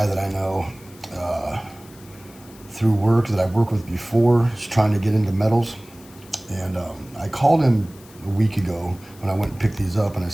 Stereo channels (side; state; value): left; noise; hiss, 24 dB below the sound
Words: that I know through work that I've worked with before. He's trying to get into metals. And I called him a week ago when I went and picked these up, and I